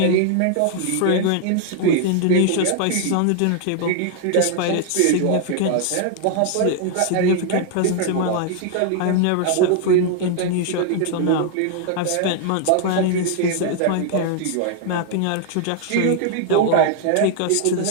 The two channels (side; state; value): both; different; correlation 0.00